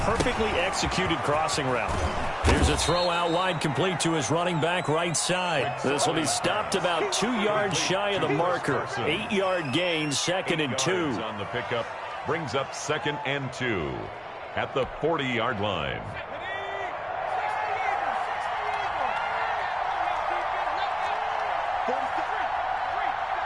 Perfectly executed crossing route. Here's a throw out wide, complete to his running back right side. This will be stopped about 2 yards shy of the marker. 8-yard gain, 2nd and 2. On the pickup brings up 2nd and 2 at the 40-yard line.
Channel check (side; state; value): both; identical; correlation 1.00